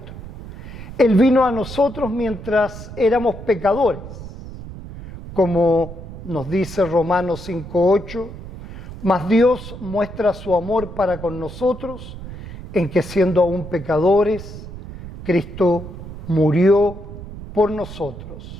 Él vino a nosotros mientras éramos pecadores, como nos dice Romanos 5:8, mas Dios muestra su amor para con nosotros en que siendo aún pecadores, Cristo murió por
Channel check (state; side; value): noise; right; rumble, 12 dB below the sound